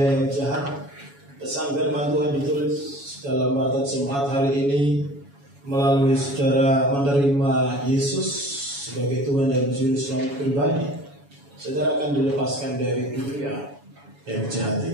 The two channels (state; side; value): late; left; 7.1 ms